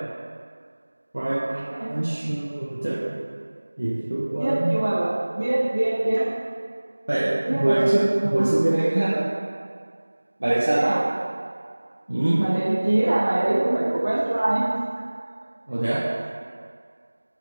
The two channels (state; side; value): inverted; both; correlation -1.00